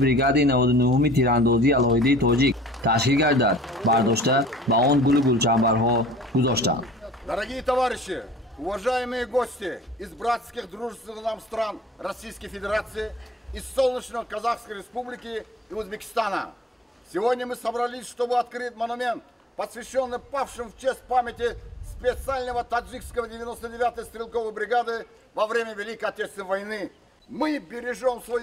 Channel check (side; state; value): both; normal; correlation 0.52